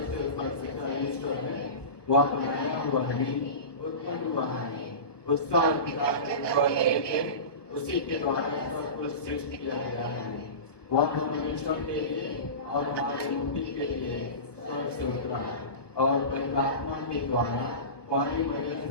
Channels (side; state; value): right; late; 1.2 ms